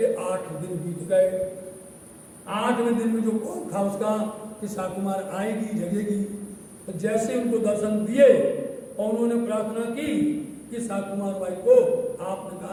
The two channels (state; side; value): identical; both; correlation 1.00